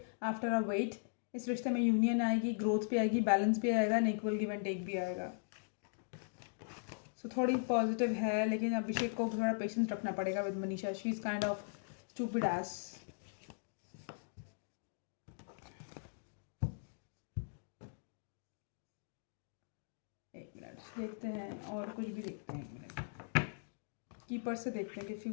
आफ्टर अ वेट इस रिश्ते में यूनियन आएगी, ग्रोथ भी आएगी, बैलेंस भी आएगा, and equal give and take भी आएगा। सो थोड़ी पॉजिटिव है, लेकिन अभिषेक को थोड़ा पेशेंस रखना पड़ेगा with Manisha. She is kind of stupid S. एक मिनट देखते हैं, और कुछ भी देखते हैं। एक मिनट कीपर से देखते हैं कि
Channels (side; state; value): right; silent; digital silence